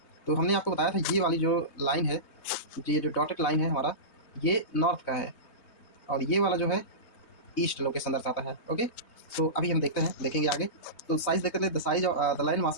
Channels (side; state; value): right; late; 3.2 ms